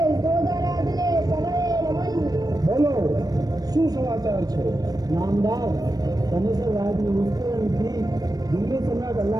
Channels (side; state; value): left; late; 0.19 ms